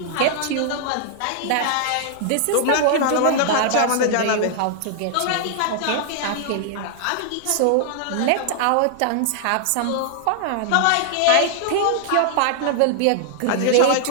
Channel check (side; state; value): both; different; correlation -0.01